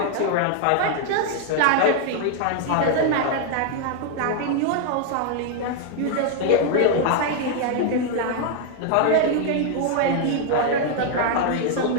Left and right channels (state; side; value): different; both; correlation 0.00